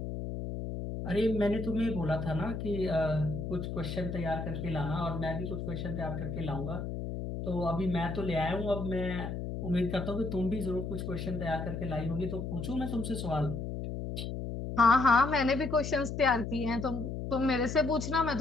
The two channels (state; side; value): noise; left; hum, 5 dB below the sound